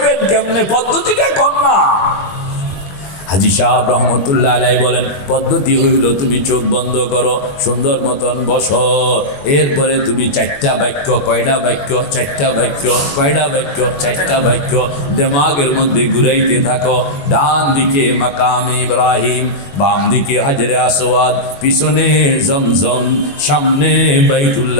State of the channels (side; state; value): right; late; 21 ms